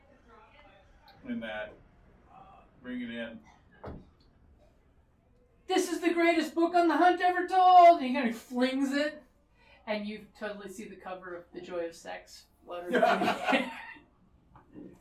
that. Bring it in. This is the greatest book on the hunt ever told! And he kind of flings it, and you totally see the cover of The Joy of Sex fluttered.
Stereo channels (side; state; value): both; identical; correlation 1.00